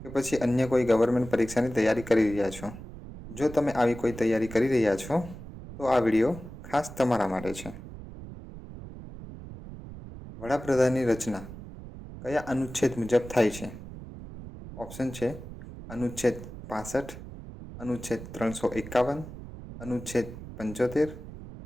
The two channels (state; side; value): noise; right; rumble, 13 dB below the sound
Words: કે પછી અન્ય કોઈ ગવર્મેન્ટ પરીક્ષાની તૈયારી કરી રહ્યા છો? જો તમે આવી કોઈ તૈયારી કરી રહ્યા છો તો આ વિડીયો ખાસ તમારા માટે છે. વડાપ્રધાનની રચના કયા અનુચ્છેદ મુજબ થાય છે? ઓપ્શન છે અનુચ્છેદ 65, અનુચ્છેદ 351, અનુચ્છેદ 75,